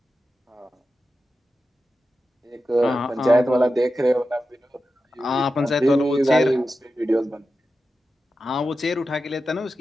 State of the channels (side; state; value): both; normal; correlation 0.91